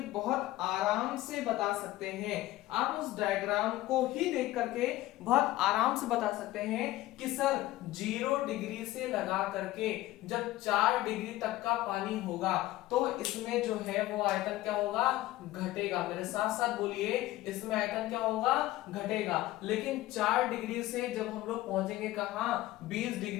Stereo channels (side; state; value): right; quieter; 16.6 dB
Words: बहुत आराम से बता सकते हैं। आप उस डायग्राम को ही देख करके बहुत आराम से बता सकते हैं कि सर 0 डिग्री से लगा करके जब 4 डिग्री तक का पानी होगा तो इसमें जो है वो आयतन क्या होगा, घटेगा। मेरे साथ साथ बोलिए, इसमें आयतन क्या होगा, घटेगा। लेकिन 4 डिग्री से जब हम लोग पहुंचेंगे कहां, 20